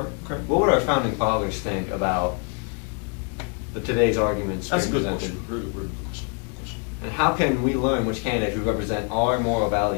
What would our founding fathers think about today's arguments That's a being good presented? question. Really good question. And how can we learn which candidates would represent our moral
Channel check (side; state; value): right; quieter; 38.0 dB